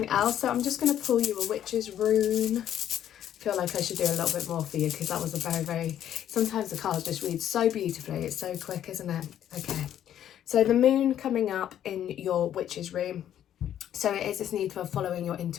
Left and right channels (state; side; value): quieter; right; 10.7 dB